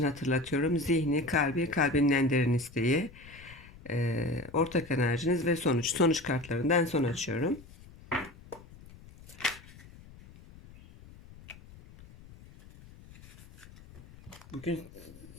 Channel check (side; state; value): left; noise; rumble, 20 dB below the sound